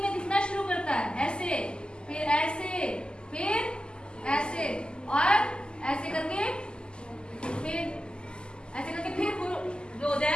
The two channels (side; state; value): right; late; 0.048 ms